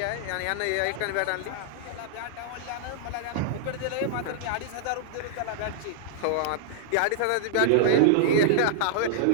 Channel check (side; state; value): both; different; correlation -0.01